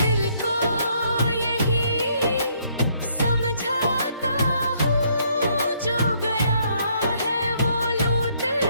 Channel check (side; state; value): both; inverted; correlation -0.69